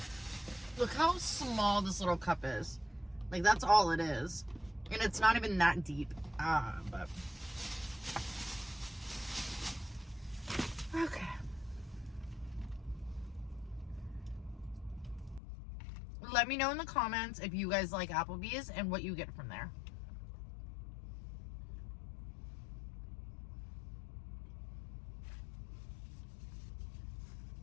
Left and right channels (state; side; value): drops out; right; at 15.4 s